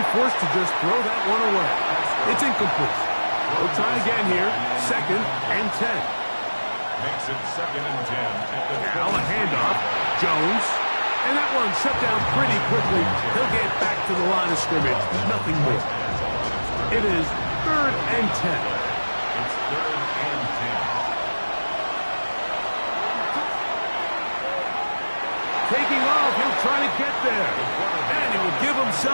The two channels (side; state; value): both; inverted; correlation -1.00